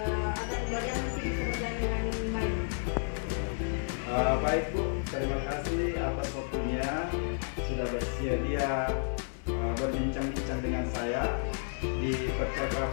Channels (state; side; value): silent; right; digital silence